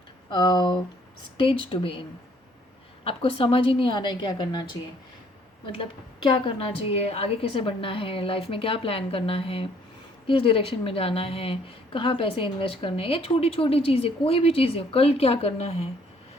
stage to be in. आपको समझ ही नहीं आ रहा है क्या करना चाहिए, मतलब क्या करना चाहिए, आगे कैसे बढ़ना है, लाइफ में क्या प्लान करना है, किस डायरेक्शन में जाना है, कहाँ पैसे इन्वेस्ट करने हैं, या छोटी छोटी चीज़ें, कोई भी चीज़ें, कल क्या करना है,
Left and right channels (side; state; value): both; normal; correlation 0.62